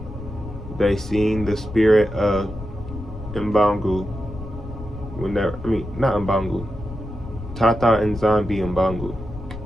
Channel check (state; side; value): noise; left; rumble, 11 dB below the sound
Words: they seen the spirit of mPungu. Not mPungu. Tata nZambi mPungu.